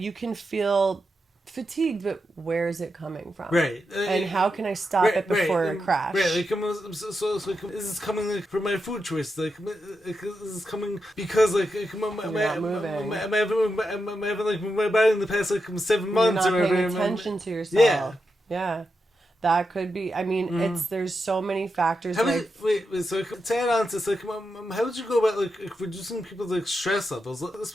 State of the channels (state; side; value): normal; both; correlation 0.87